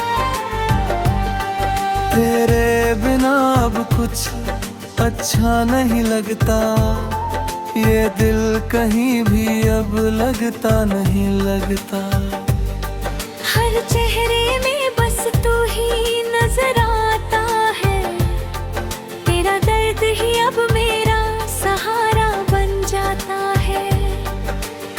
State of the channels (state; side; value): identical; both; correlation 1.00